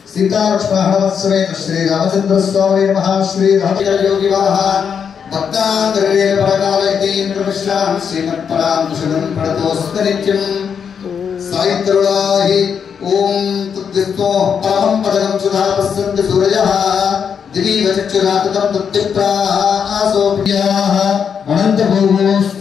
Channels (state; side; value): quieter; right; 7.1 dB